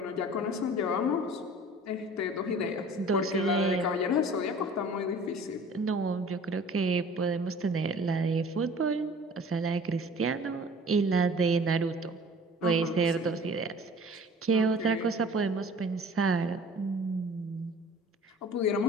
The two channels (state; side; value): normal; both; correlation 0.46